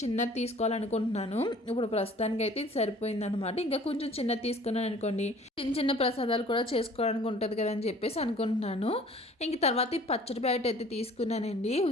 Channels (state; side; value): normal; both; correlation 0.50